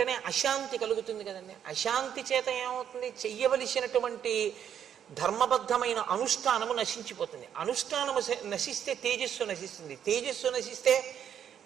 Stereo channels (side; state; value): left; quieter; 9.0 dB